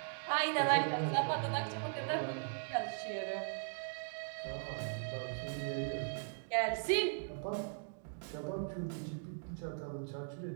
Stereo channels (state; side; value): silent; left; digital silence